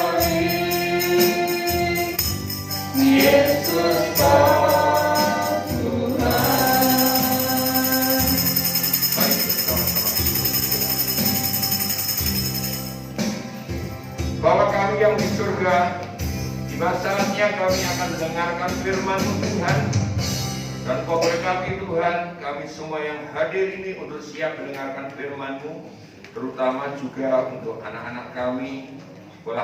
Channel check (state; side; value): identical; both; correlation 1.00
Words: Bapa kami yang di surga, tiba saatnya kami akan mendengarkan firman-Mu Tuhan. Dan Kau berkati Tuhan, kami semua yang hadir ini untuk siap mendengarkan firman-Mu, terutama juga untuk anak-anak kami.